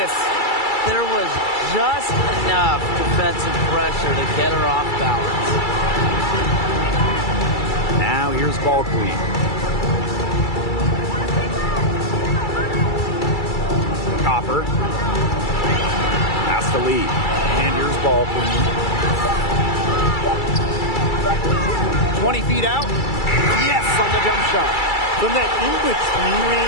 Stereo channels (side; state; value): right; late; 2.3 ms